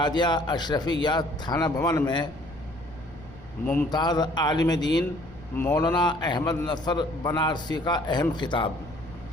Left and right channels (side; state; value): left; noise; rumble, 20 dB below the sound